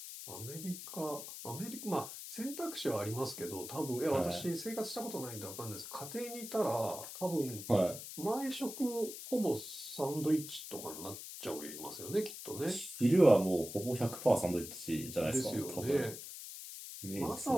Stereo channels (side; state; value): left; noise; hiss, 10 dB below the sound